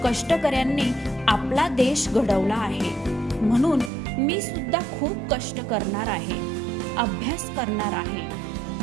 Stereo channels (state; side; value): drops out; left; at 3.9 s